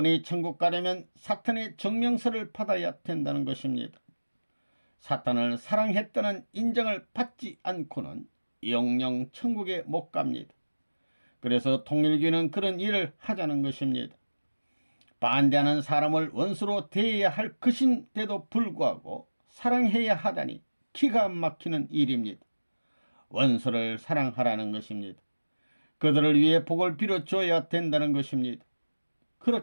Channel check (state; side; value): inverted; both; correlation -1.00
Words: 천국 가려면 사탄의 증명서를 받아야 된다는 것입니다. 사탄을 사랑했다는 인정을 받지 않고는 영영 천국에 못 갑니다. 그래서 통일교는 그런 일을 하자는 것입니다. 반대하는 사람을 원수로 대해야 할 것인데도 불구하고 사랑해야 하다니 기가 막히는 일입니다. 원수를 사랑하라는 것입니다. 그들을 위해 복을 빌어줘야 된다는 것입니다.